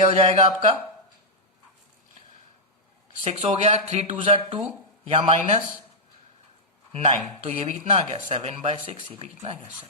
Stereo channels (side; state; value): both; normal; correlation -0.07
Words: हो जाएगा आपका 6 हो गया, 3 2 2 या -9। तो ये भी कितना आ गया? 7/6। ये भी कितना आ गया?